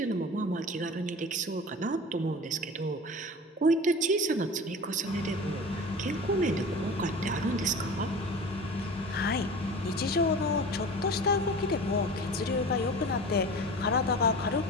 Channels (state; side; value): normal; both; correlation 0.36